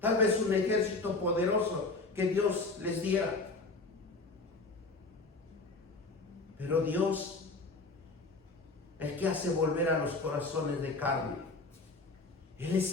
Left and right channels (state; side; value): quieter; right; 3.4 dB